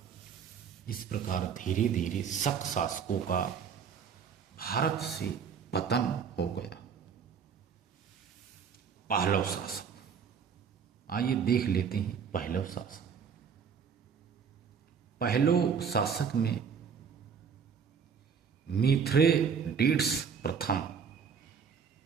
इस प्रकार धीरे धीरे शक शासकों का भारत से पतन हो गया। पहलव शासक, आइए देख लेते हैं पहलव शासक। पहलव शासक में मिथ्रेडेट्स प्रथम,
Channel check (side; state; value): left; quieter; 6.7 dB